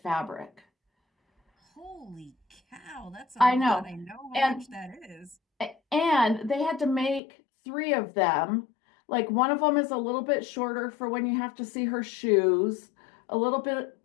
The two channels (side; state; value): right; drops out; at 7.2 s